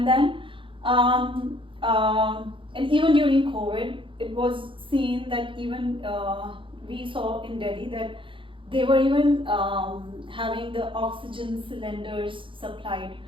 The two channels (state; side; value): late; left; 0.25 ms